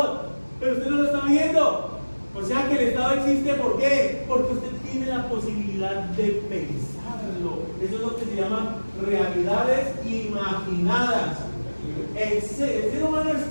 pero usted no lo está viendo. O sea que el Estado existe, ¿por qué? Porque usted tiene la posibilidad de pensarlo. Eso es lo que se llaman realidades imaginadas. El ser humano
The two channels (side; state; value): both; inverted; correlation -1.00